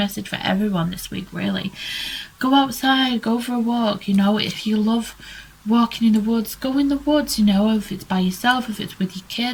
for everyone this week, really. Go outside, go for a walk, you know. If you love walking in the woods, go in the woods, you know. If it's by yourself, if it's with your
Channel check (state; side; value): identical; both; correlation 1.00